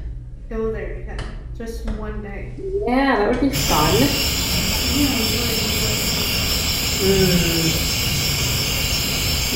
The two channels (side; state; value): both; identical; correlation 1.00